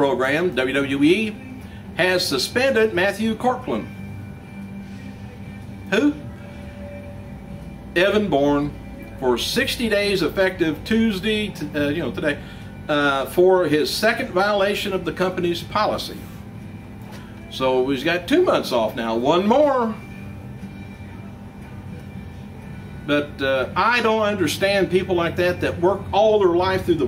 WWE has suspended Matthew Courtland. Who? Evan Bourne, for 60 days effective Tuesday, today, for his second violation of the company's policy. So he's got 2 months off now, one more. But I don't understand people like that work all their life through the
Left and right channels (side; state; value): both; identical; correlation 1.00